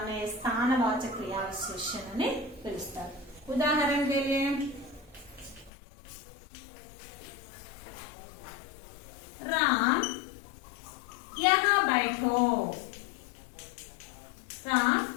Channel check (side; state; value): right; drops out; at 5.7 s